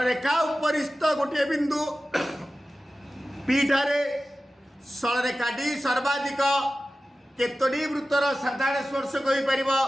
रेखा उपरिस्थ गोटे बिंदु पी ठारे सरल रेखाटी सर्वाधिक केतोटी वृत्तर साधारण स्पर्शक हो पार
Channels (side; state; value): both; normal; correlation 0.95